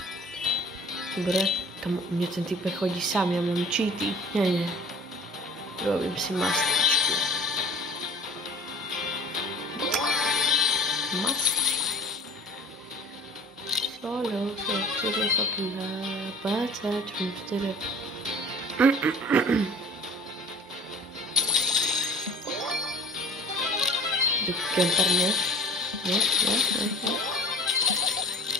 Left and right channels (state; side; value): normal; both; correlation 0.44